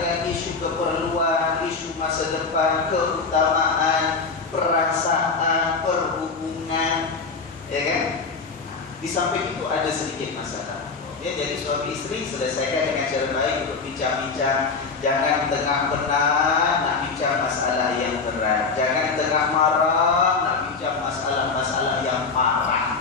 isu keperluan, isu masa depan, keutamaan, perasaan, perhubungan, ya kan? Di samping itu ada sedikit masalah. Ya, jadi suami istri selesaikan dengan cara baik untuk bincang-bincang. Jangan tengah penat nak bincang masalah yang berat. Jangan tengah marah nak bincang masalah-masalah yang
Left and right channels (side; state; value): right; quieter; 4.6 dB